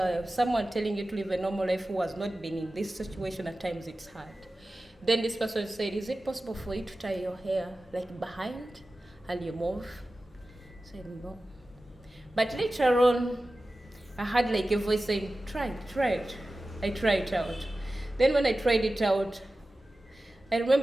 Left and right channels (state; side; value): normal; both; correlation 0.95